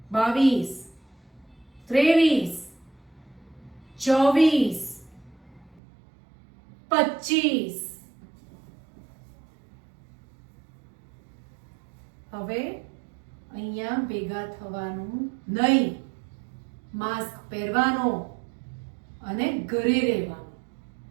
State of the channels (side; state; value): left; drops out; at 5.8 s